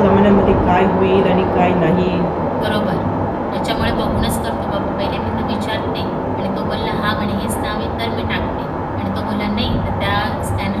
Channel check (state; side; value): identical; both; correlation 1.00